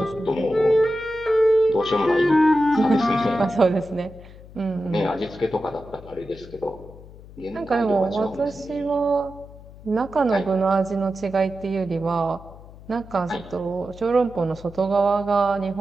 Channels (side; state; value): left; noise; hum, 19 dB below the sound